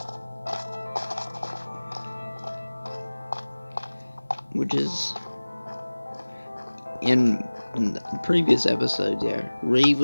Which is in the previous episodes, yeah, Reeve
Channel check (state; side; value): inverted; both; correlation -1.00